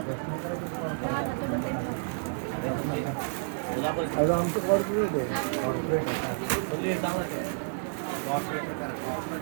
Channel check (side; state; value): left; silent; digital silence